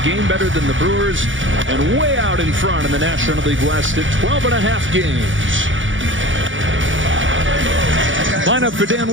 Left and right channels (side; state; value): left; late; 0.56 ms